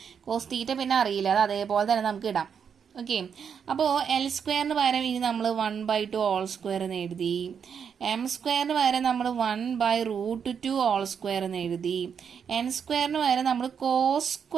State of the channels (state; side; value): quieter; left; 7.2 dB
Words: cos തീറ്റ പിന്നെ അറിയില്ല, അത് അതേപോലെ തന്നെ നമുക്ക് ഇടാം. ഓക്കെ, അപ്പോൾ L² പകരം ഇനി നമ്മൾ 1/2 2 എന്ന് എഴുതി. M² പകരം നമ്മൾ 1/√2 എന്ന് എഴുതി. N² പകരം നമ്മൾ